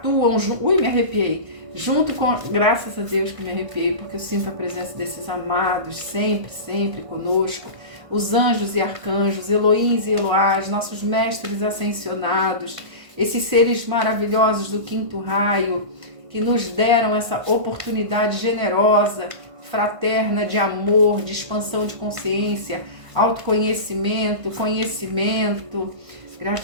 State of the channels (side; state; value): left; late; 1.5 ms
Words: junto. Ui, me arrepiei. Junto com. Graças a Deus que me arrepiei, porque eu sinto a presença desses amados sempre conosco. Os anjos e arcanjos, Elohims e Eloás, nossos mestres ascensionados, esses seres maravilhosos do quinto raio, que nos deram essa oportunidade generosa, fraterna, de amor, de expansão de consciência, autoconhecimento, conhecimento.